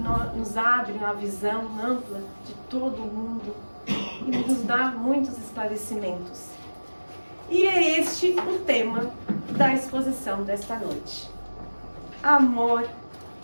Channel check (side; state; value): both; inverted; correlation -1.00